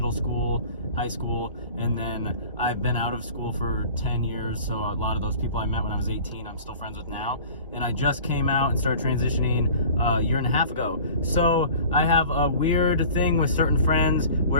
school, high school, and then I've been out of school for 10 years. So a lot of those people I met when I was 18, I'm still friends with now. And I just came out and started transitioning a year and a half ago. So I have a weird thing with certain friends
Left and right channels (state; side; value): inverted; both; correlation -0.43